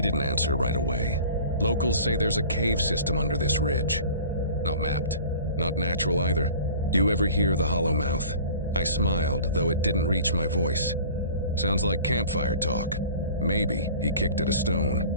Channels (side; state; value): both; inverted; correlation -0.44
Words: didn't answer right away. Locals say there's a cave system under this ridge. Not mapped, not natural either. You ever hear the hollow mouth? I smiled, though it didn't reach my voice. Sounds like campfire talk. Maybe he kicked at a